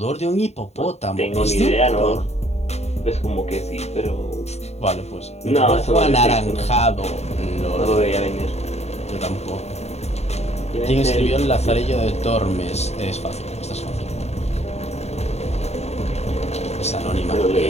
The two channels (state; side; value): late; right; 0.31 ms